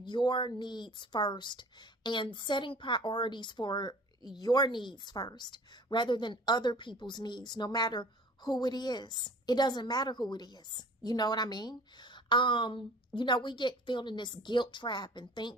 your needs first and setting priorities for your needs first rather than other people's needs, no matter who it is. It doesn't matter who it is. You know what I mean? We get filled in this guilt trap and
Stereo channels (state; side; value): normal; both; correlation 0.46